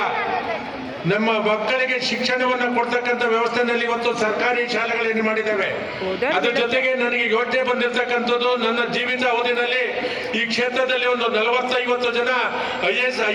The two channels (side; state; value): both; identical; correlation 1.00